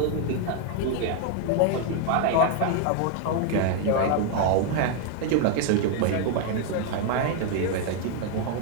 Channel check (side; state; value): both; different; correlation 0.01